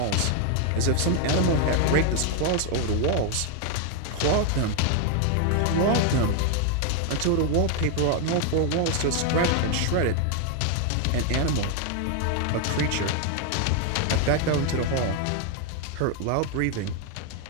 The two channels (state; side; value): different; both; correlation 0.01